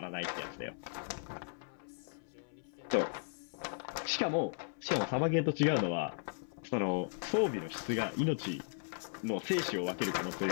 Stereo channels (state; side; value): silent; right; 53 dB below the other